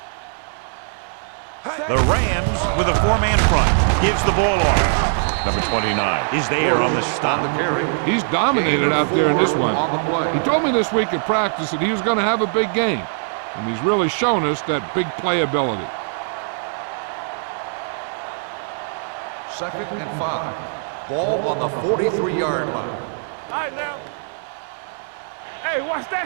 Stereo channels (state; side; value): silent; left; 65 dB below the other